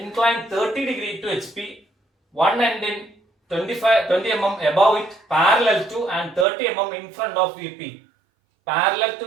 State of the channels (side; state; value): left; drops out; at 6.5 s